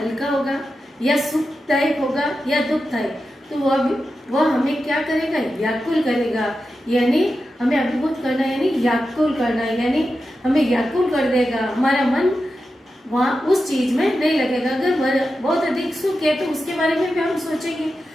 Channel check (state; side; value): normal; both; correlation 0.91